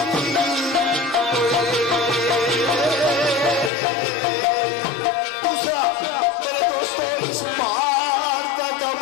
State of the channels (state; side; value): drops out; right; at 3.7 s